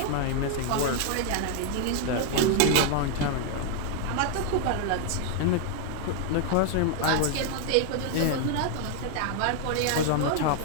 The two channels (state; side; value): different; both; correlation 0.00